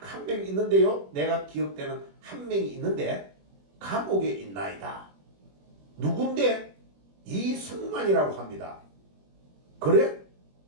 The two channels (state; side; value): late; left; 21 ms